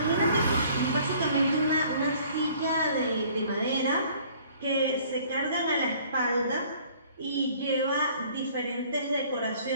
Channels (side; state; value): both; inverted; correlation -0.55